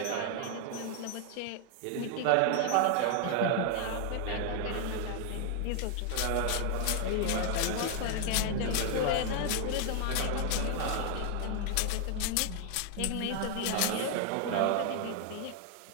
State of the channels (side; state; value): both; different; correlation 0.00